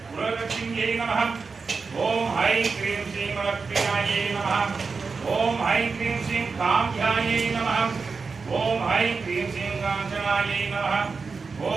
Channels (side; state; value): left; quieter; 4.7 dB